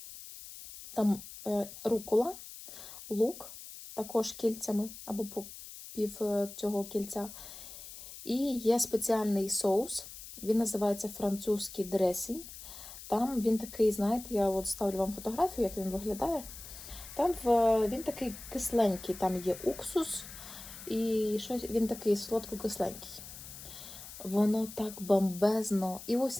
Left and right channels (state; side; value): noise; left; hiss, 14 dB below the sound